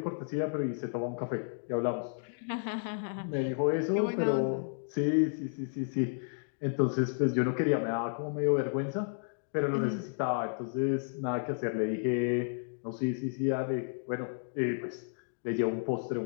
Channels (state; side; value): silent; right; digital silence